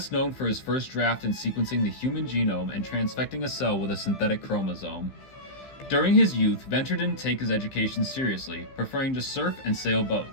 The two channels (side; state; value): right; late; 15 ms